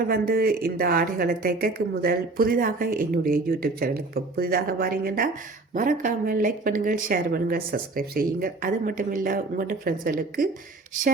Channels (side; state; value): left; quieter; 3.4 dB